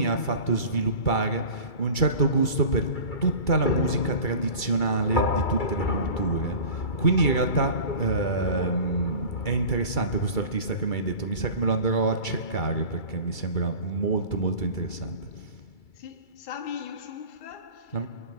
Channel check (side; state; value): right; late; 2.3 ms